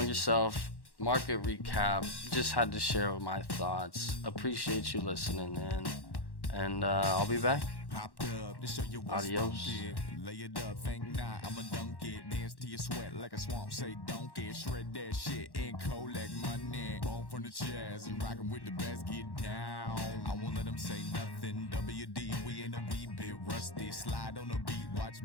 yourself. Market recap. Just had to share my thoughts. Appreciate you listening in. And I'll be back. Adios. Lay it up, think not, I'ma dunk it. Dance to your sweat like a swamp, say don't get. Shred that shit and collect money. Bone from the chest, and rockin' with the best, get down. I won't let them say nothing. WD, we ain't a wee bit rusty. Slide on the beat, watch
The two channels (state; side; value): late; right; 1.1 ms